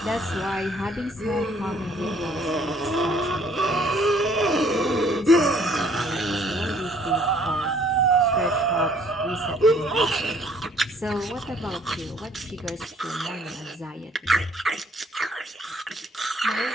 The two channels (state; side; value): normal; both; correlation 0.60